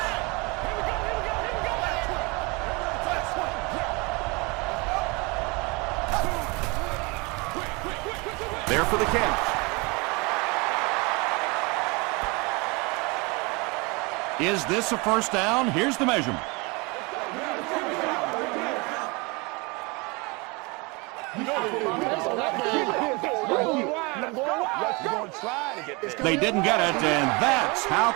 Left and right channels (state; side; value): quieter; left; 27.8 dB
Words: There for the catch. Is this a first down? Here's the measurement. They didn't get it, and that's how